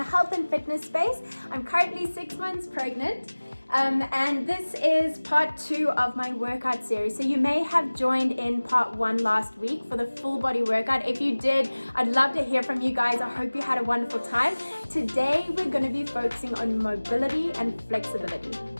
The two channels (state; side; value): inverted; both; correlation -1.00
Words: health and fitness space. I'm currently 6 months pregnant and this is part 2 of my workout series. So you may have joined in part 1 last week for the full body workout. If you did, I'd love to hear from you guys. I hope you had a wonderful time. Today we're going to be focusing on mobility and flexibility.